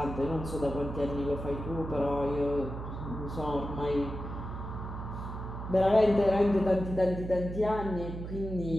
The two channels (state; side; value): noise; right; hum, 7 dB below the sound